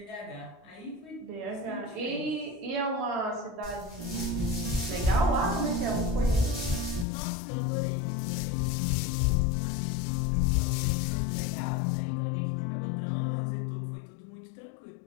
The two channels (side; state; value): right; drops out; at 7.1 s